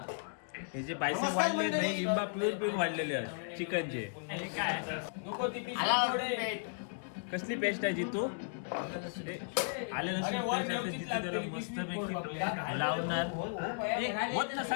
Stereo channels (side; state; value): right; silent; digital silence